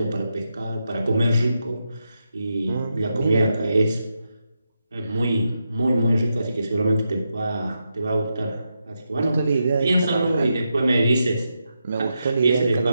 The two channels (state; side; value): inverted; both; correlation -0.86